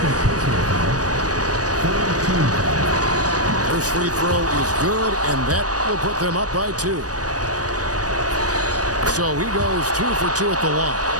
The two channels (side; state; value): left; late; 0.68 ms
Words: First free throw is good, and that will put them up by 2. So he goes 2 for 2 at the line,